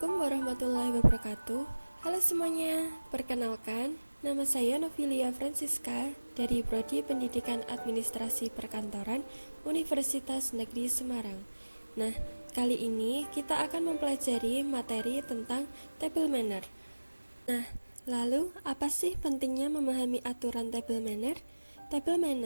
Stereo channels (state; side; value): inverted; both; correlation -1.00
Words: warahmatullahi wabarakatuh. Halo semuanya, perkenalkan, nama saya Novilia Francisca dari Prodi Pendidikan Administrasi Perkantoran Universitas Negeri Semarang. Nah, kali ini kita akan mempelajari materi tentang table manner. Nah, lalu apa sih pentingnya memahami aturan table manner? Table